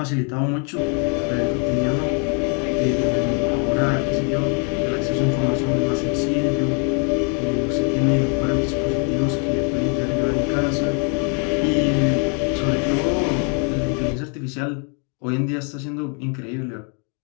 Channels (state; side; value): quieter; right; 38.7 dB